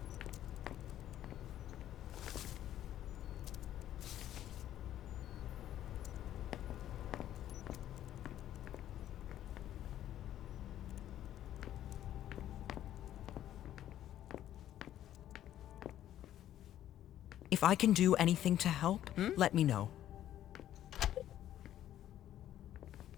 If I can do anything to help, let me know.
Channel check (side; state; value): right; quieter; 12.0 dB